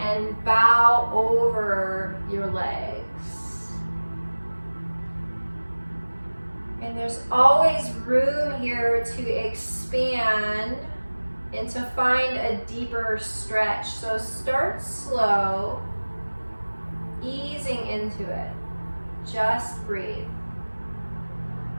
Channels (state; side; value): inverted; both; correlation -1.00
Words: bow over your legs. And there's always room here to expand and to find a deeper stretch. So start slow, easing into it. Just breathe.